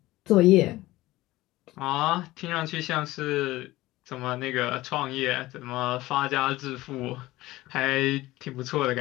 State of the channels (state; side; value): quieter; right; 18.0 dB